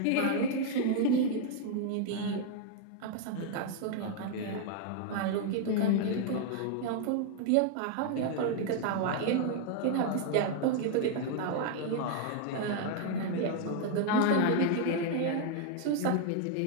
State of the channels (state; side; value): different; both; correlation 0.00